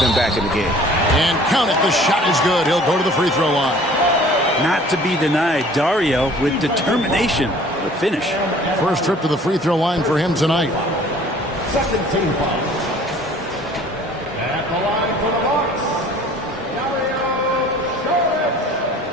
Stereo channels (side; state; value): both; normal; correlation 0.51